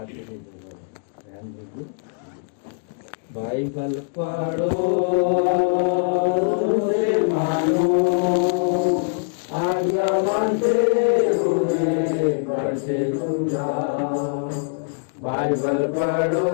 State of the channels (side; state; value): right; silent; digital silence